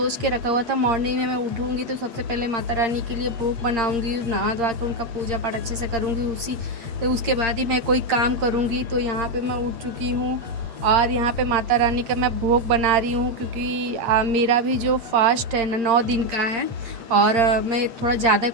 के रखा हुआ था मॉर्निंग में मैं उठूँगी तो सबसे पहले माता रानी के लिए भोग बनाऊँगी, नहा धोवा के उनका पूजा पाठ अच्छे से करूँगी। उसके बाद ही मैं कोई काम करूँगी। तो यहाँ पे मैं उठ चुकी हूँ और यहाँ पे माता रानी का मैं भोग बना रही हूँ, क्योंकि मेरा भी जो फास्ट है ना 9 दिन का है। और मैं थोड़ा ज़्यादा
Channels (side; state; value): left; late; 8.7 ms